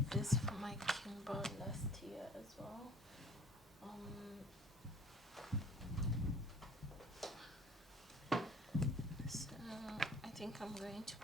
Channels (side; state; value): both; normal; correlation 0.50